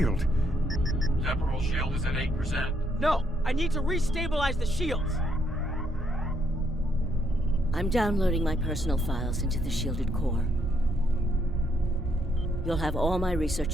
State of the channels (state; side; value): normal; both; correlation 0.73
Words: Temporal shield is at 8%. No, I need to restabilize the shields. I'm downloading my personal files into the shielded core. You'll have all my